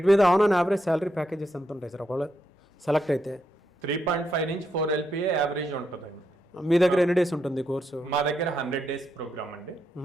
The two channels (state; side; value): normal; both; correlation 0.81